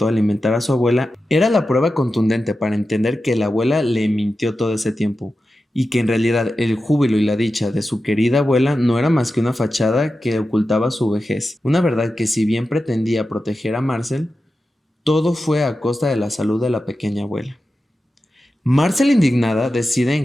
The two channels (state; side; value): normal; both; correlation 0.92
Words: alimentar a su abuela, era la prueba contundente para entender que la abuela le mintió todo ese tiempo, y que en realidad el júbilo y la dicha de su querida abuela no era más que una fachada que ocultaba su vejez. Una verdad que, si bien pretendía proteger a Marcel, todo fue a costa de la salud de la pequeña abuela. Marcel, indignada, decide